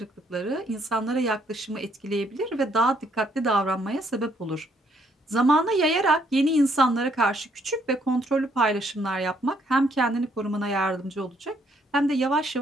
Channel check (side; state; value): both; normal; correlation 0.69